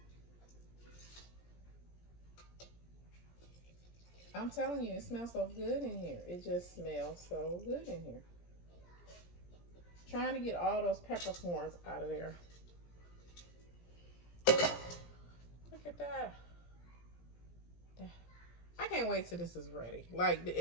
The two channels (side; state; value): right; late; 17 ms